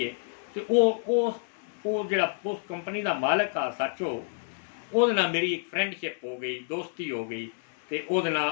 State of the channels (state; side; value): silent; right; digital silence